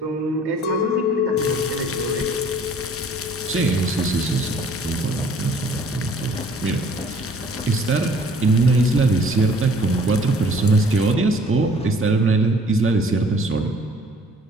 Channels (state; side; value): normal; both; correlation 0.55